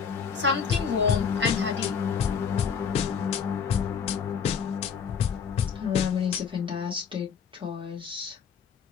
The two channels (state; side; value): quieter; right; 6.7 dB